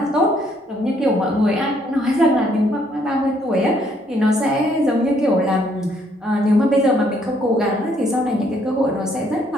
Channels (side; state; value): both; normal; correlation 0.68